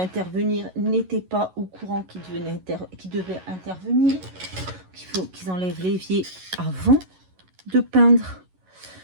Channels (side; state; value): left; late; 11 ms